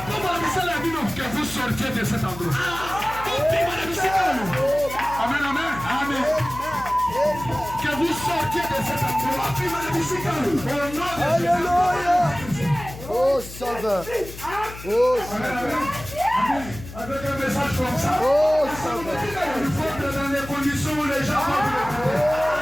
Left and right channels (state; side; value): noise; left; hum, 14 dB below the sound